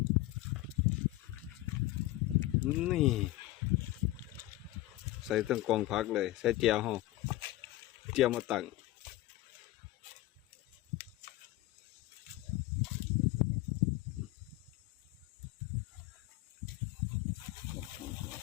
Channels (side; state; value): right; quieter; 16.9 dB